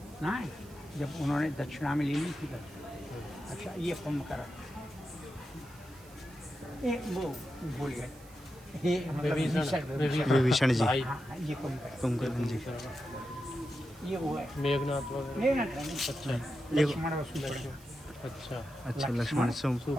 ना, जब उन्होंने दक्षिणा में ले ली थी तब। अच्छा ये कुंभकर्ण, ये वो भूल गए, ये मतलब विभीषण जी, हाँ, ये कुंभकर्ण जी, ये वो है मेघनाथ वगैरह। मेघनाथ नहीं, अच्छा लक्ष्मण और सुभद्रा। अच्छा अच्छा लक्ष्मण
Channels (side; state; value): right; noise; hiss, 23 dB below the sound